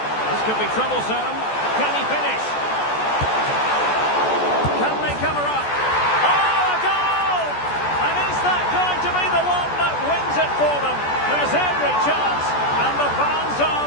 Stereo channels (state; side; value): late; right; 14 ms